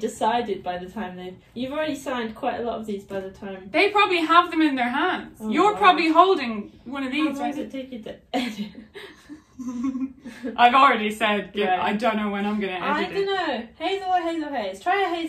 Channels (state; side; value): identical; both; correlation 1.00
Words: by the time you've already signed quite a lot of these by the time. They probably have them in their hands. Oh, You're wow. probably holding one of How these. long does it take you to edit? I've already said, Right. I don't know when I'm going to edit I don't know. Hazel or Hazel Hayes? Try a